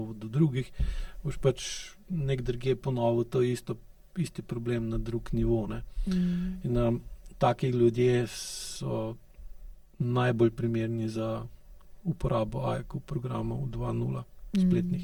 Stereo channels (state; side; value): identical; both; correlation 1.00